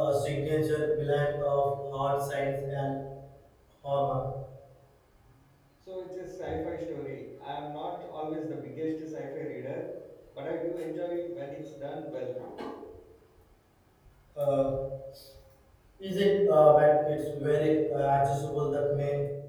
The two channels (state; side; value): identical; both; correlation 1.00